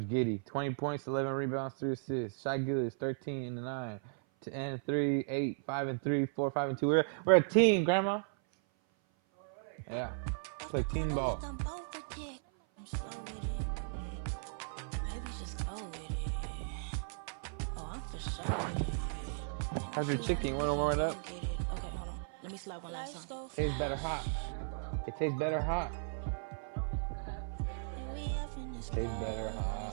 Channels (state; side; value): silent; left; 54 dB below the other